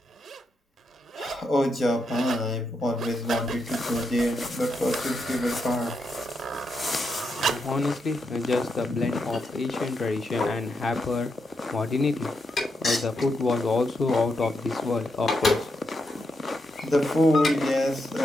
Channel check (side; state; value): both; normal; correlation 0.83